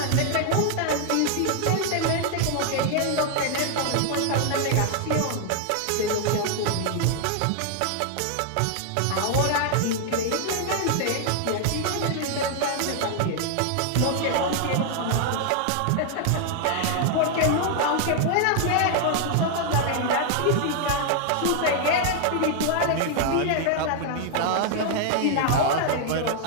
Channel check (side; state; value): both; different; correlation 0.00